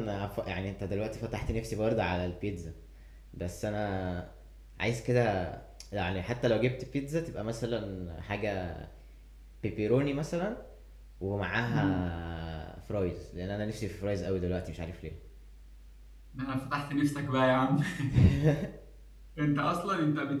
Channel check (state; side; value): identical; both; correlation 1.00